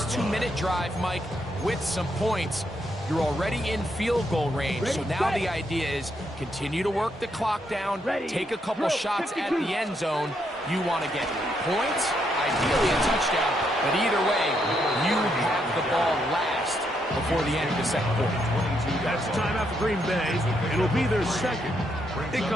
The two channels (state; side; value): normal; both; correlation 0.77